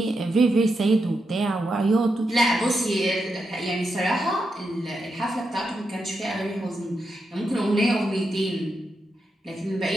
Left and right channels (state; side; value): normal; both; correlation 0.85